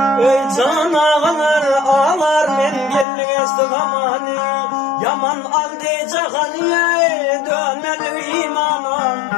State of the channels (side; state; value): right; drops out; at 3.1 s